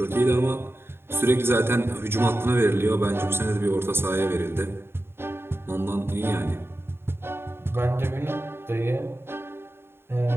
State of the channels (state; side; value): late; left; 0.11 ms